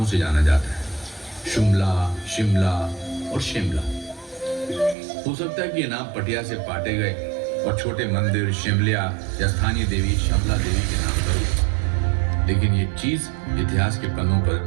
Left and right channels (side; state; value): left; drops out; at 5.0 s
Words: से जाना जाता है, शुमला, शिमला और शिमला। हो सकता है कि ये नाम पटिया से पाटे गए और छोटे मंदिर शिमलिया या स्थानीय देवी शमला देवी के नाम पर हुए, लेकिन ये चीज इतिहास के पन्नों पर